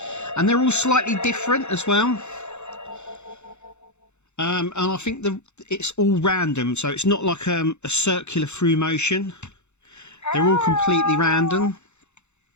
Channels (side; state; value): right; late; 0.82 ms